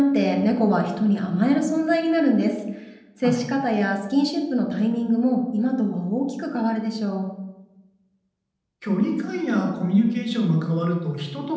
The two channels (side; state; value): both; identical; correlation 1.00